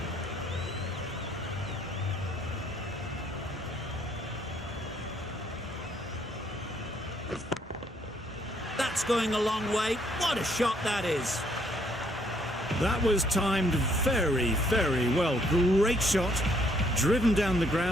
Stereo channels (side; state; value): both; normal; correlation 0.67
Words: That's going a long way. What a shot that is. That was timed very, very well. Great shot. Driven down the